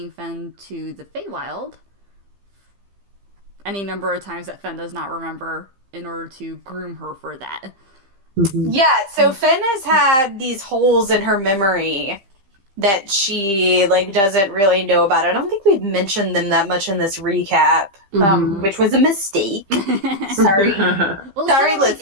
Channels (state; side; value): late; left; 15 ms